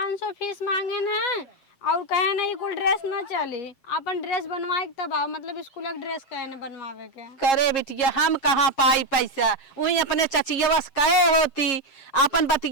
फीस मांगे न और कहे ना ये कुल ड्रेस ना चली, अपन ड्रेस बनवाए तब आओ, मतलब स्कूल का ड्रेस कहे ना बनवावे के। करे बिटिया हम कहाँ पाई पैसा, वही अपने चचिया कहे होती, अपन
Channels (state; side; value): late; right; 7.4 ms